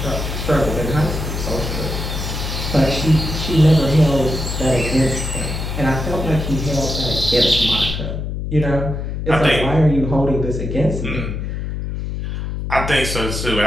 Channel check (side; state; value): left; noise; hum, 4 dB below the sound